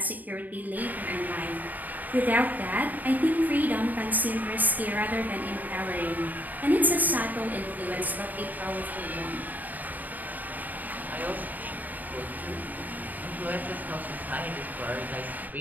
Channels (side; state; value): left; late; 0.083 ms